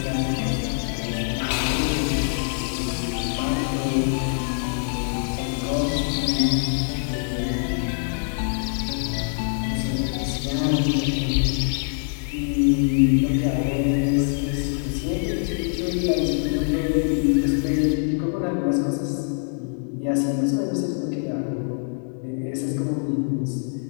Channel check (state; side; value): silent; right; digital silence